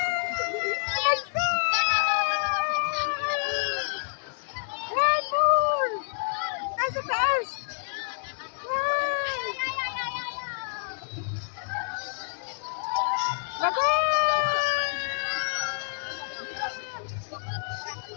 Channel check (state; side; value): silent; right; digital silence